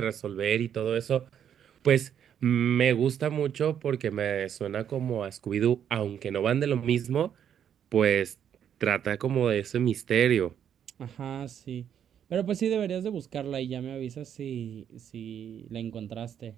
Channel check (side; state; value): left; quieter; 9.0 dB